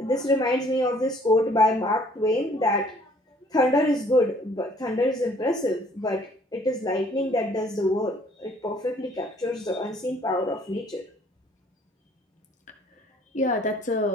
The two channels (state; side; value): normal; both; correlation 0.59